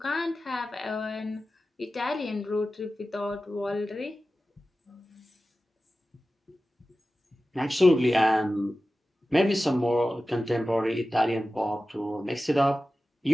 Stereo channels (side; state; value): both; normal; correlation 0.95